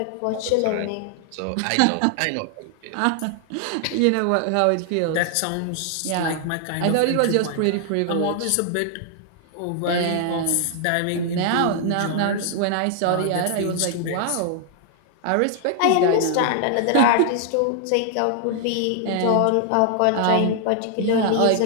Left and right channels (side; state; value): both; different; correlation 0.00